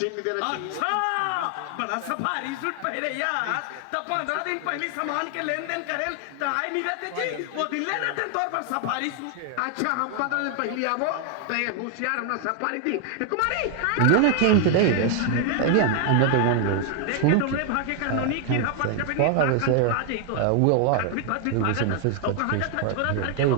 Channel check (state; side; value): different; both; correlation 0.00